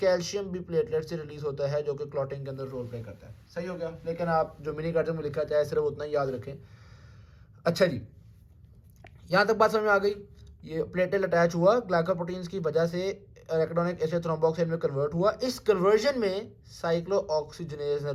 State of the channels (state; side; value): identical; both; correlation 1.00